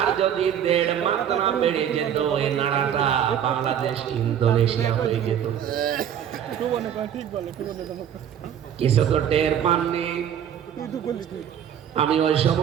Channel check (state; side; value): quieter; left; 9.3 dB